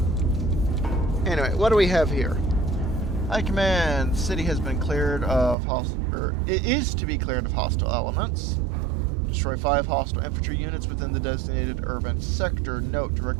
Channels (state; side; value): drops out; left; at 5.6 s